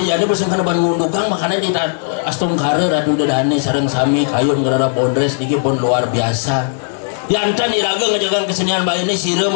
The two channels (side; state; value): right; silent; 69 dB below the other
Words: jadi pasang kena ban ngundukang makanya di astung kare radu dadane sareng sami kayun ngerara bondres niki pun luar biasa yantan iraga ngejagaan kesenian Bali ini